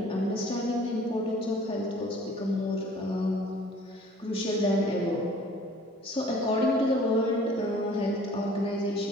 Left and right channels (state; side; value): normal; both; correlation 0.52